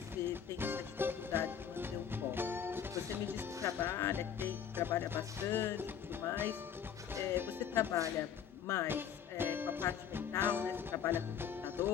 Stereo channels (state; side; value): quieter; right; 8.3 dB